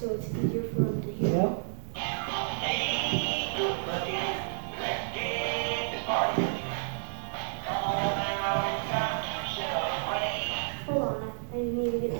it's easier for them to hear. Yeah. Hold on, I need to get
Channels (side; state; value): left; silent; 57 dB below the other